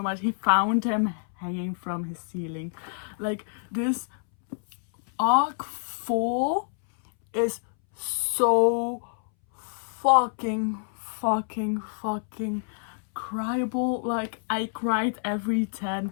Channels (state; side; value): silent; right; 60 dB below the other